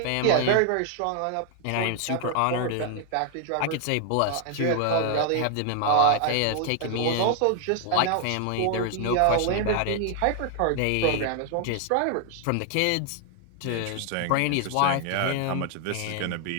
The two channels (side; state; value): both; different; correlation 0.00